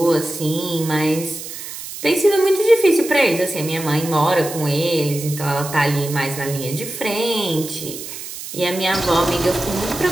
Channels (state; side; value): noise; right; hiss, 10 dB below the sound